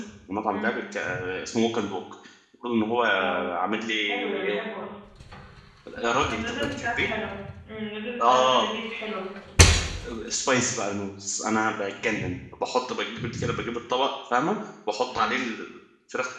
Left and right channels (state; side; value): identical; both; correlation 1.00